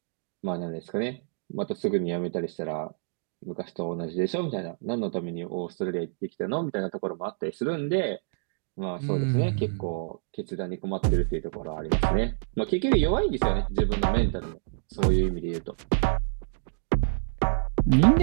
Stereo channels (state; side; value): silent; left; digital silence